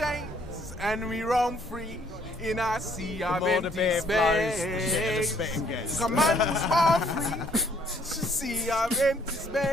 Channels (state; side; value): normal; both; correlation 0.64